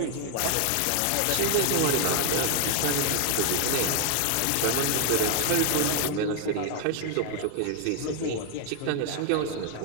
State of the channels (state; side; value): different; both; correlation 0.00